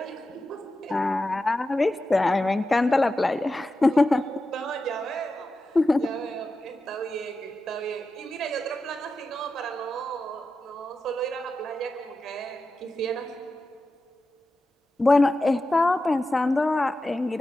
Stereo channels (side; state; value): both; normal; correlation 0.92